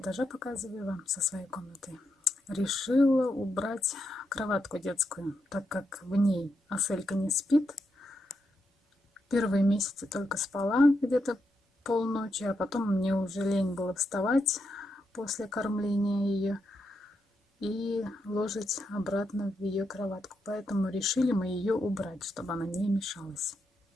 показываю вам, со своей комнаты. Решила убрать кроватку детскую, так как в ней Аселька не спит. Первые месяцы только спала где-то полночи, а потом мне уже лень было вставать после кормления ее и ложить обратно в ее кроватку. Поэтому решили мы ее убрать, чтобы она не мешалась.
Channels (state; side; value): normal; both; correlation 0.83